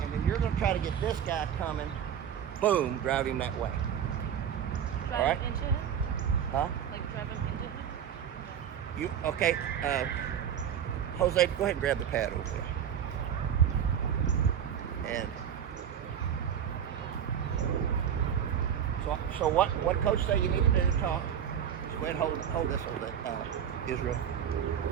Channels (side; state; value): left; quieter; 8.8 dB